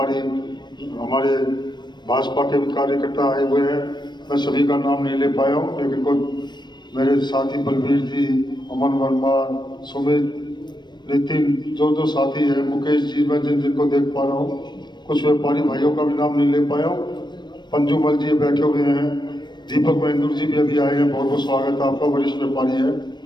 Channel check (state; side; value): late; right; 0.22 ms